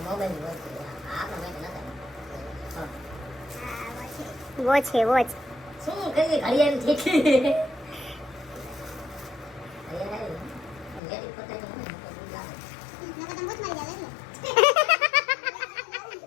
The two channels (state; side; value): drops out; right; at 11.0 s